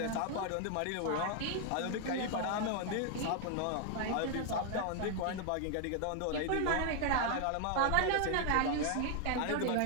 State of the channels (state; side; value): different; both; correlation 0.00